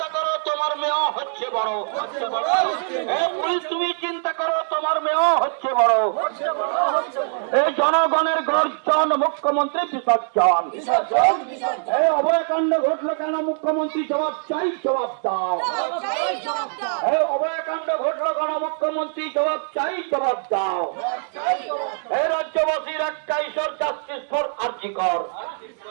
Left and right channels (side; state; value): left; silent; digital silence